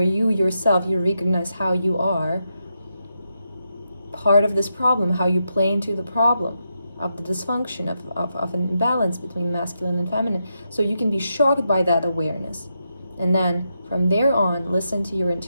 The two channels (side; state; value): both; inverted; correlation -0.84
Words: you yourself, you recognize how you are part of this problem, how you play into the problem of the dysfunction, of an imbalance between masculine and feminine. So you can be shocked by that awareness. And then from there on, listen to your